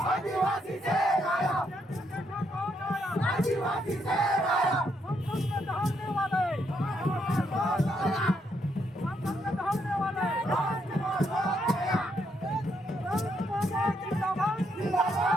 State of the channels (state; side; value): normal; both; correlation 0.76